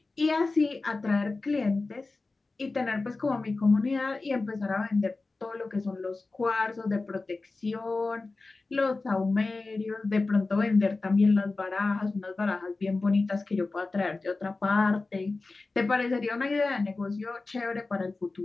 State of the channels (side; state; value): right; quieter; 3.6 dB